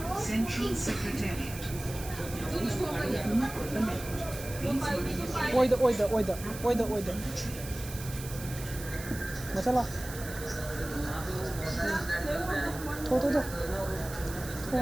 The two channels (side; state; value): right; noise; hiss, 12 dB below the sound